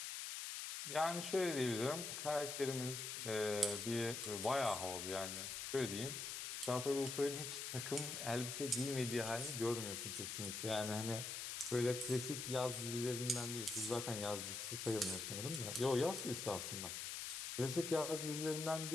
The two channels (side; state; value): left; noise; hiss, 4 dB below the sound